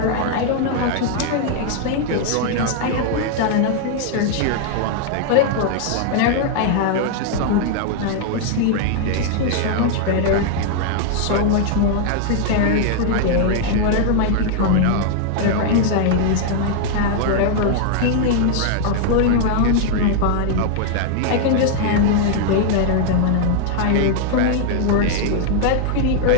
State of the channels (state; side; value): different; both; correlation 0.00